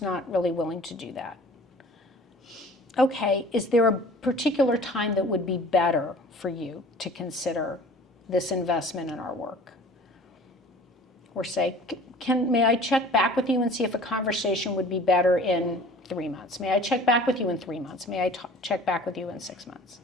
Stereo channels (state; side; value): normal; both; correlation 0.46